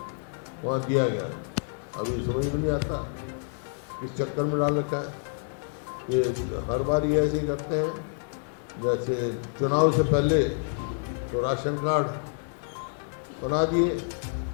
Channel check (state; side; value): silent; right; 59 dB below the other